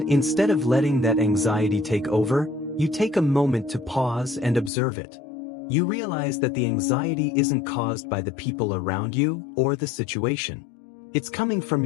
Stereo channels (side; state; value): right; drops out; at 4.7 s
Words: instead of letting that anxiety take over, you take a moment to pause and observe it. You realize that the anxiety isn't caused by the people around you or the situation. It's coming from